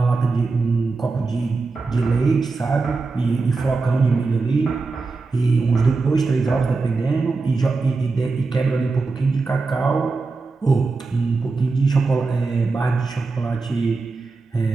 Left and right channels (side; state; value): left; quieter; 4.0 dB